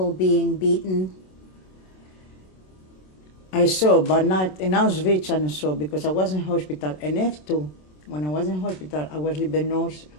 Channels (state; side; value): late; right; 27 ms